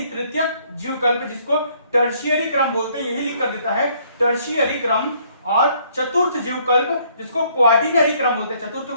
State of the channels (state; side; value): inverted; both; correlation -0.64